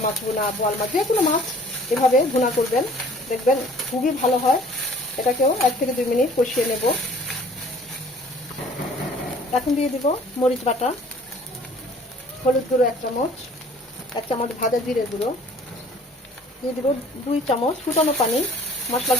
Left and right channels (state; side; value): normal; both; correlation 0.52